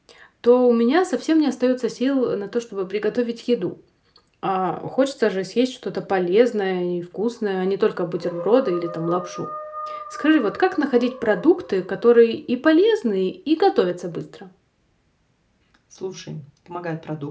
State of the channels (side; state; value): both; identical; correlation 1.00